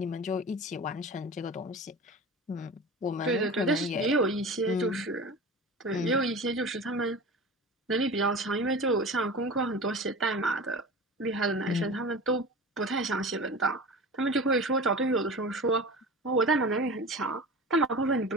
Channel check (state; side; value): normal; both; correlation 0.33